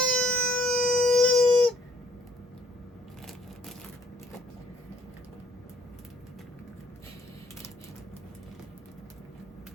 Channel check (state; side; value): normal; both; correlation 0.63